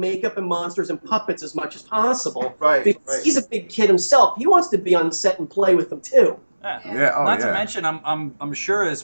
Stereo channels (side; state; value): both; inverted; correlation -1.00